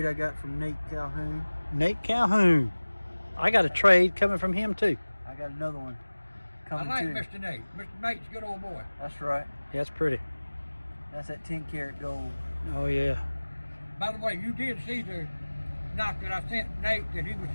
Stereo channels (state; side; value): inverted; both; correlation -1.00